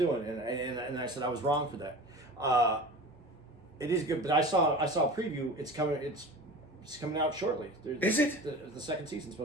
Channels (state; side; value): normal; both; correlation 0.35